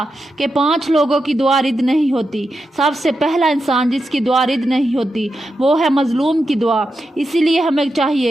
کہ 5 لوگوں کی دعا رد نہیں ہوتی۔ سب سے پہلا انسان جس کی دعا رد نہیں ہوتی وہ ہے مظلوم کی دعا، اسی لیے ہمیں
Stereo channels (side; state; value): both; normal; correlation 0.87